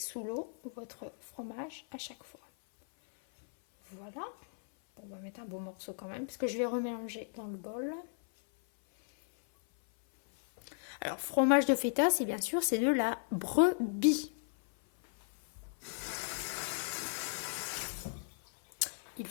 l'eau votre fromage à chaque fois. Voilà. On va mettre un beau morceau quand même, parce que je vais remélanger dans le bol. Alors, fromage de feta, c'est bien sûr, c'est de la brebis. Il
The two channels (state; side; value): silent; right; 54 dB below the other